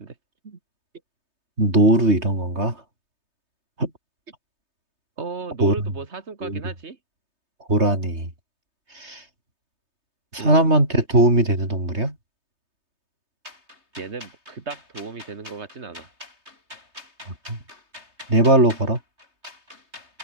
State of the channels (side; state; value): left; late; 3.2 ms